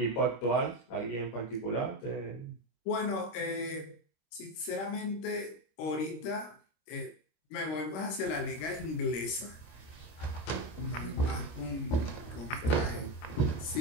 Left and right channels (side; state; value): right; late; 26 ms